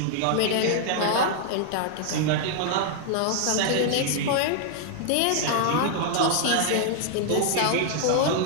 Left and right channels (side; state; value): both; different; correlation 0.00